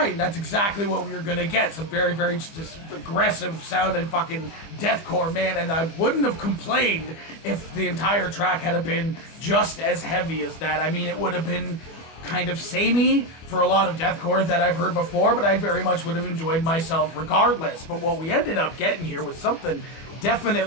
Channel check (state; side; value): late; right; 25 ms